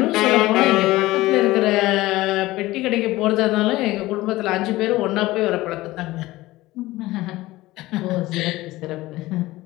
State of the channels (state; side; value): quieter; right; 18.2 dB